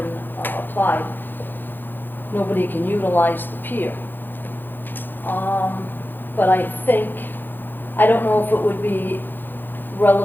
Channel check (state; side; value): late; right; 0.093 ms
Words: applied, nobody can utilize the pier. But I don't know if it would be